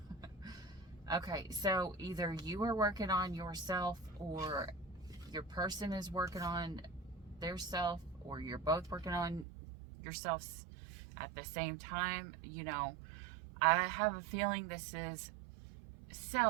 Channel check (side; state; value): left; drops out; at 9.5 s